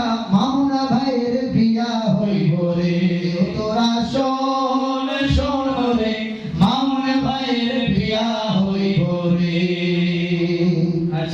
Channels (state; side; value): identical; both; correlation 1.00